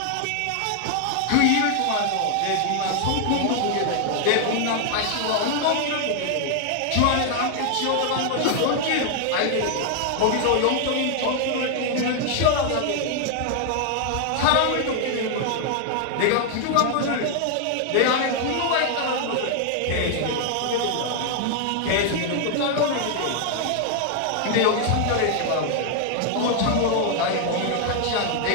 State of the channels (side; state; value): both; different; correlation 0.00